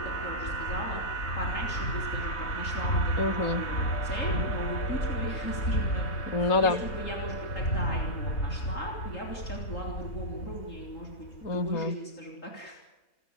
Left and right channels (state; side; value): late; right; 3.8 ms